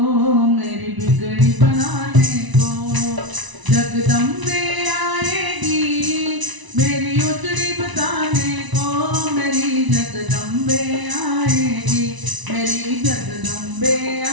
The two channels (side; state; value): left; late; 1.0 ms